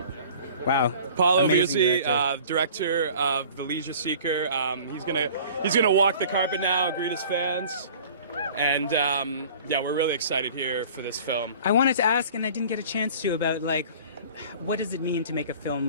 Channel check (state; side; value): inverted; both; correlation -0.46